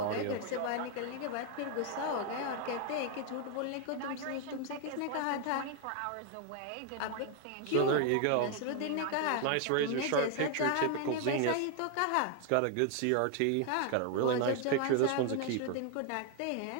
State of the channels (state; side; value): different; both; correlation 0.00